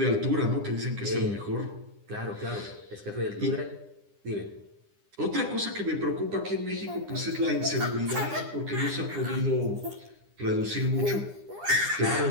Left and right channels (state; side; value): late; left; 9.9 ms